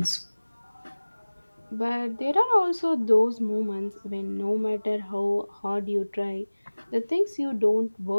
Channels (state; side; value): inverted; both; correlation -1.00